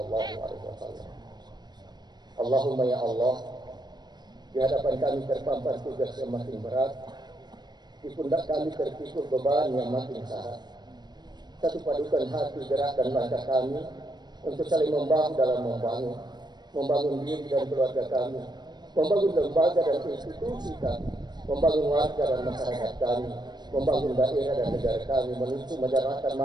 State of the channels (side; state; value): left; late; 0.20 ms